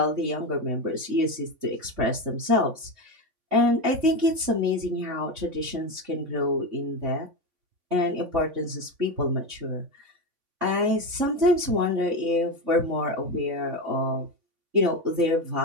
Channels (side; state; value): left; late; 3.5 ms